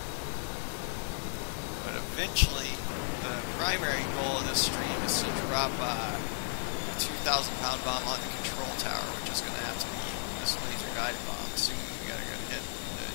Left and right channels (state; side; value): silent; right; digital silence